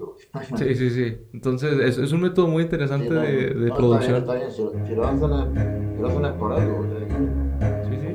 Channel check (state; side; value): identical; both; correlation 1.00